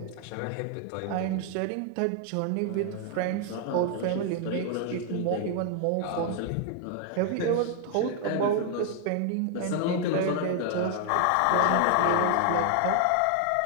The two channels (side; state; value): both; different; correlation 0.00